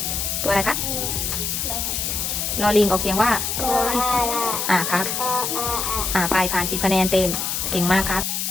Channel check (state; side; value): noise; left; hiss, 1 dB below the sound